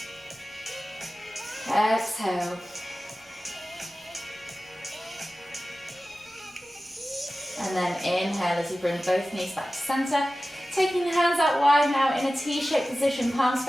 Exhale. And then inhale as you bring both knees back to center. Taking the hands out wide now in a T-shaped position, palms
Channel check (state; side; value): normal; both; correlation 0.95